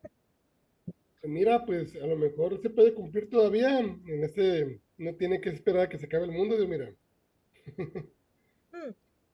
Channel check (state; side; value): identical; both; correlation 1.00